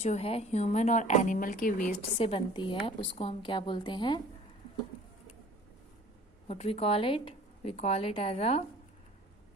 जो है ह्यूमन और एनिमल के वेस्ट से बनती है उसको हम क्या बोलते हैं? What we call it? We call it as a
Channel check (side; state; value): both; normal; correlation 0.48